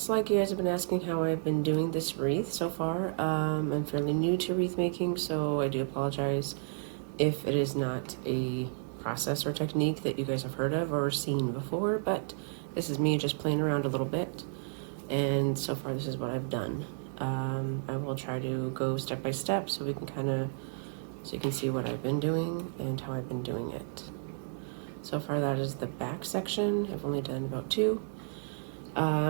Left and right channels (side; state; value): left; silent; digital silence